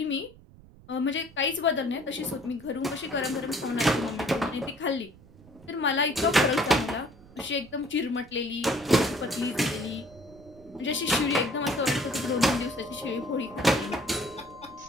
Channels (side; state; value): right; noise; rumble, 23 dB below the sound